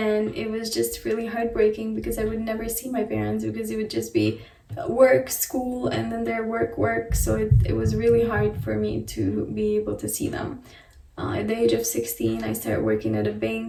it was just really heartbreaking because I would never see my parents because it would just be work, school, and then their work. So it was really hard for me to be able to see them. At the age of 16, I started working at a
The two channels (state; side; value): identical; both; correlation 1.00